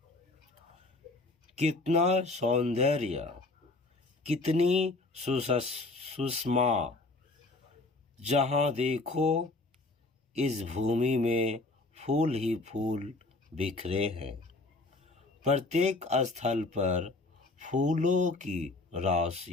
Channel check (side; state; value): right; quieter; 3.1 dB